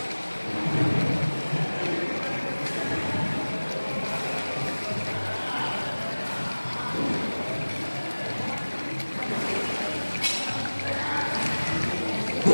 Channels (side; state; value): both; inverted; correlation -1.00